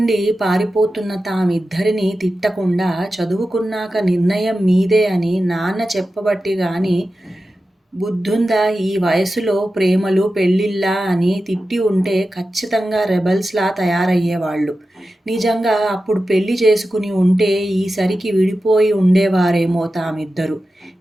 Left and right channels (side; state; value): both; normal; correlation 0.93